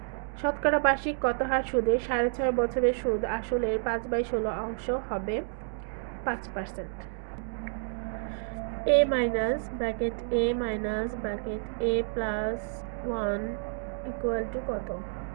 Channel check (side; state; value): left; silent; digital silence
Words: শতকরা বার্ষিক কত হার সুদে ৬.৫ বছরের সুদ আসলের ৫/১৬ অংশ হবে? ৫%। a - +1 = কত?